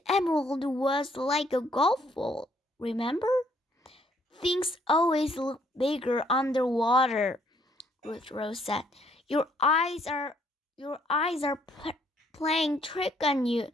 emerald was like a golf ball, remember? Things always look bigger underwater, Ruth Rose said. Your eyes are playing trick on you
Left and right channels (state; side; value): normal; both; correlation 0.67